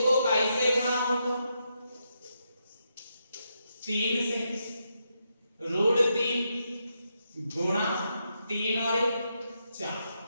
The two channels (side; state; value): both; inverted; correlation -0.82